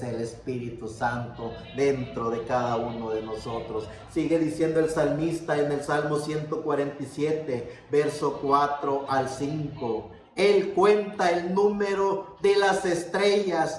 el Espíritu Santo dentro de cada uno de nosotros. Sigue diciendo el salmista en el Salmo 147, verso 4 al 5. Él cuenta el número de las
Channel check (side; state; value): both; identical; correlation 1.00